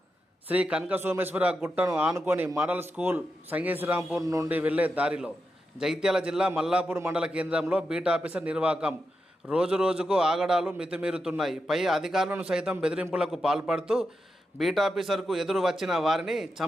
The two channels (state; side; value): normal; both; correlation 0.87